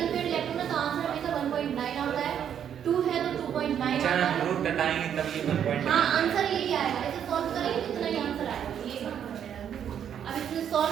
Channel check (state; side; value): quieter; left; 9.0 dB